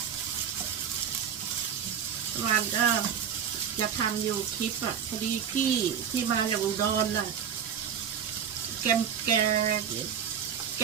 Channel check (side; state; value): left; quieter; 8.0 dB